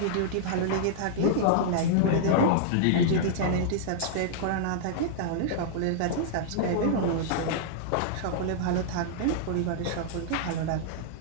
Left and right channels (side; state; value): both; different; correlation -0.01